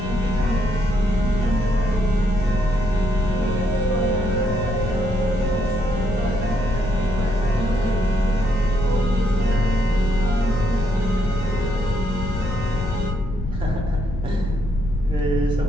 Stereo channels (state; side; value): noise; left; rumble, 6 dB below the sound